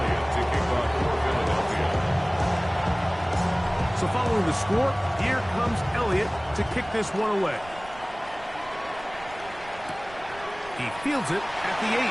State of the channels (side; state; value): right; noise; rumble, 19 dB below the sound